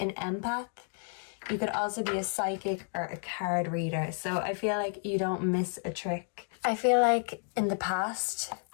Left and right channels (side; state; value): right; silent; 57 dB below the other